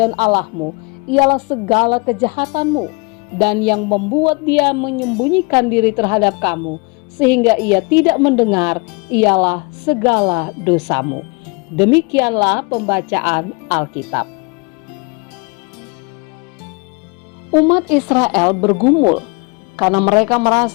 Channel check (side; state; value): right; quieter; 30.0 dB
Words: Allahmu ialah segala kejahatanmu, dan yang membuat dia menyembunyikan diri terhadap kamu sehingga ia tidak mendengar ialah segala dosamu. Demikianlah pembacaan Alkitab. Umat Israel bergumul karena mereka